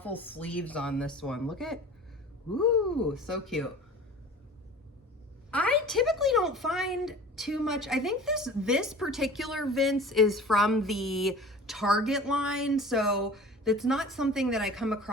sleeves on this one. Look at, ooh, so cute. I typically don't find too much. I think this particular Vince is from the Target line, so it's not something that I come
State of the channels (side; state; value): both; normal; correlation 0.41